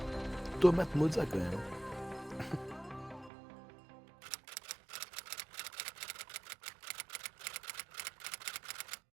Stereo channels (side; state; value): left; drops out; at 3.3 s